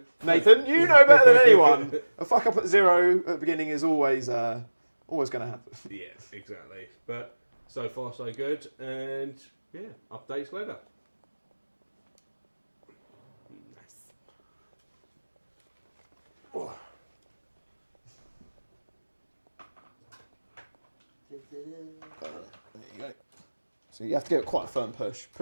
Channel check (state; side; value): inverted; both; correlation -1.00